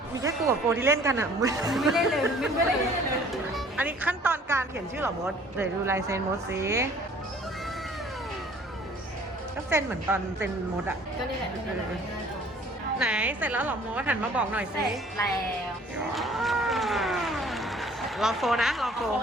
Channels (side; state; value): both; normal; correlation 0.53